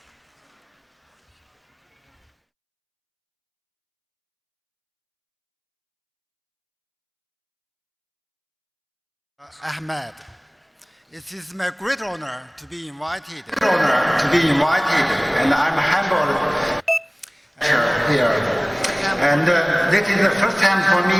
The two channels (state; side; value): identical; both; correlation 1.00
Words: Ahmed. It is my great honor to be invited. And I'm humbled here. And this is the first time for